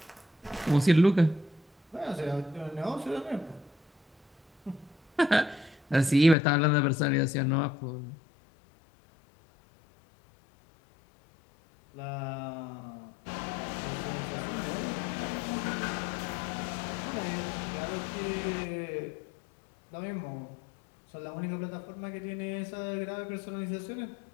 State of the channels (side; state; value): right; drops out; at 6.4 s